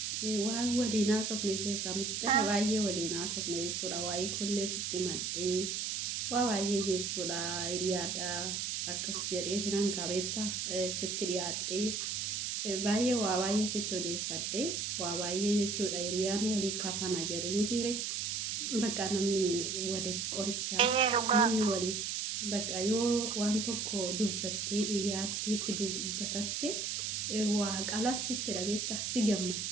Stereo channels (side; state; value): right; noise; hiss, 2 dB below the sound